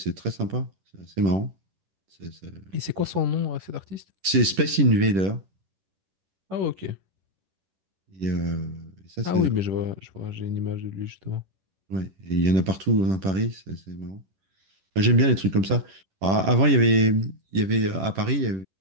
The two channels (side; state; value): left; late; 10 ms